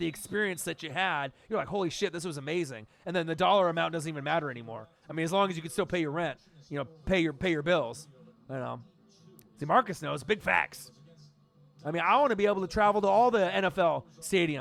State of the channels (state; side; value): identical; both; correlation 1.00